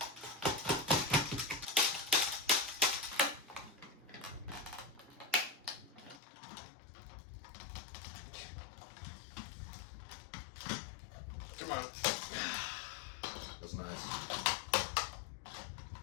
Come on. That's nice.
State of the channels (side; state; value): right; drops out; at 6.2 s